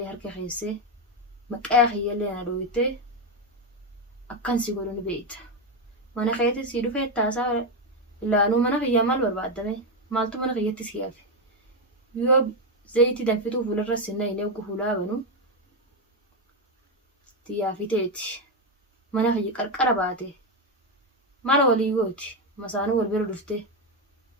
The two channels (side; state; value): both; normal; correlation 0.07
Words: harka keessee maqaa kiyyallee na dhooyitee akkan si godhu ni beekta. Mana keetti si dhufee taasaa ilaanuu mana kiyyaa maal barbaadame maaltu mana kiyyatti si hafe. Yoo zayitii danfituu fuularra sinna hin eegu fuulaa banu xiyyaafiteeti. Mana kiyya qarqara baate mala walii gooti masaanuu wal bira dhuftee.